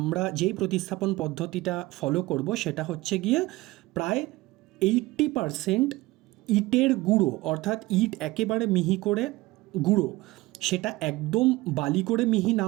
যেই প্রতিস্থাপন পদ্ধতিটা ফলো করব সেটা হচ্ছে গিয়ে প্রায় 80% ইটের গুঁড়ো, অর্থাৎ ইট একেবারে মিহি করে গুঁড়ো, সেটা একদম বালি করে মিহি না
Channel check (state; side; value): quieter; left; 19.8 dB